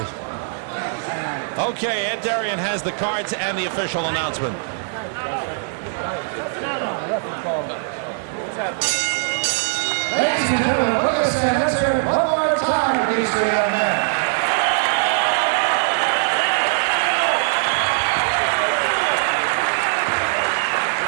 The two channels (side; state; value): left; silent; digital silence